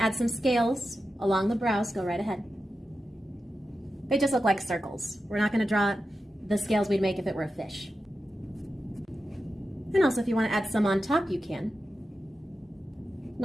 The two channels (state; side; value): normal; both; correlation 0.91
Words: add some scales along the brows, go right ahead. They just look like circles. We're not going to draw the scales we'd make if it were a fish. And also, if you want to add some on top, you can.